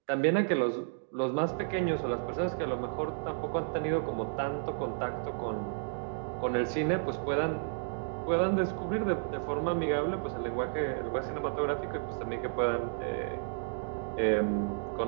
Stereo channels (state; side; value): silent; left; digital silence